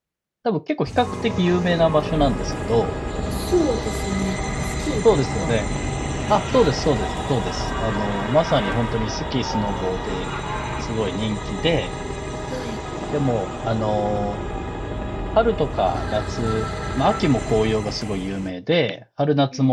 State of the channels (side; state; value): both; identical; correlation 1.00